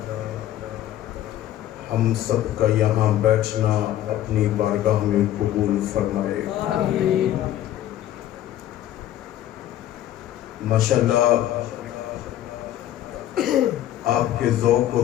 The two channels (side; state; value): right; quieter; 12.6 dB